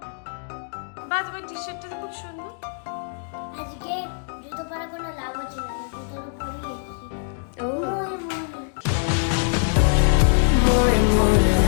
বা তোমার টি-শার্টটা খুব সুন্দর। আজকে জুতো পরে কোনো লাভ হচ্ছে না, জুতোটা পরিয়ে এসেছি। ও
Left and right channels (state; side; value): silent; right; digital silence